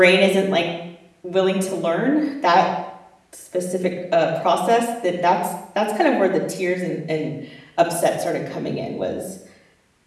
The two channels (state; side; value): identical; both; correlation 1.00